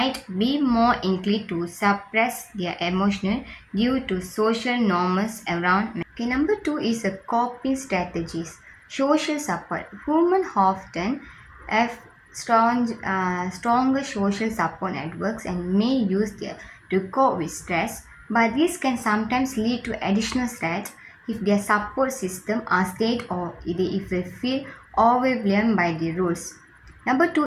be more inclined to suppress their emotion due to social norms around men. Okay, number two is a coping strategies. Social support. Women often have stronger social support networks and may use them to cope with stress, but this can sometimes lead to additional stress if their support system are stayed or if they feel overwhelmed by the rules. Number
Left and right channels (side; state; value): both; identical; correlation 1.00